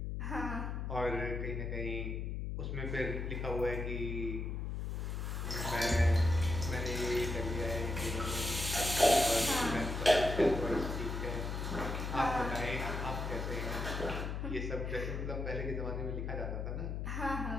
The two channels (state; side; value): noise; left; hum, 3 dB below the sound